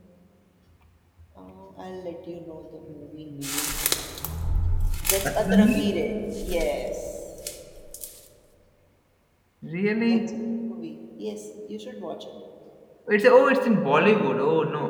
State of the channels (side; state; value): both; identical; correlation 1.00